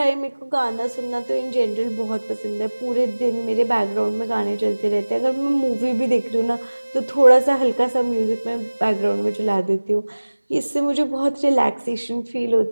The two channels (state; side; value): inverted; both; correlation -1.00